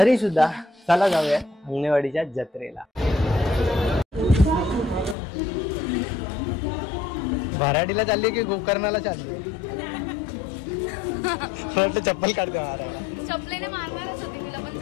सुद्धा चला जाऊया अंगणेवाडीच्या जत्रेला. भराडीला चालले की गोकर्णाला चालले? चप्पल काढते. चपलेने मारणारच होते तिला, पण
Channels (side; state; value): right; drops out; at 5.2 s